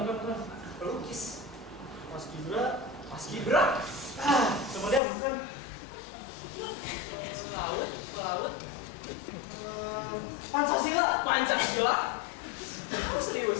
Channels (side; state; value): right; drops out; at 5.0 s